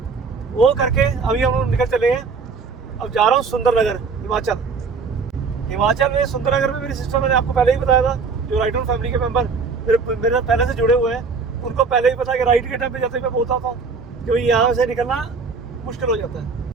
वो करके अभी हम लोग निकल चले हैं। अब जा रहा हूँ सुंदरनगर, हिमाचल में। सुंदरनगर में मेरी सिस्टर, मैंने आपको पहले ही बताया था, जो राइडर फैमिली के मेंबर मेरे पहले से जुड़े हुए हैं, उनको पहले ही पता है कि राइड के टाइम पे जाते मैं बोलता था कि यहाँ से निकलना मुश्किल हो जाता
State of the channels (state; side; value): quieter; left; 4.9 dB